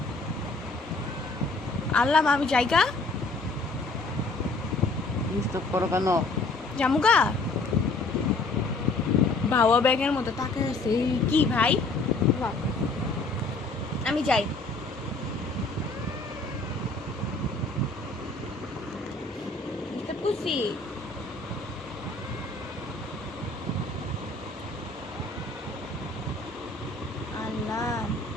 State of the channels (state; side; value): quieter; right; 3.3 dB